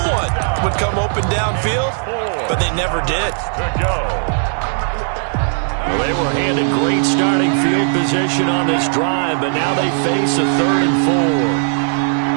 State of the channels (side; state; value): left; silent; 68 dB below the other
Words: would come open downfield, but they never did. Well, they were handed great starting field position on this drive, but now they face a 3rd and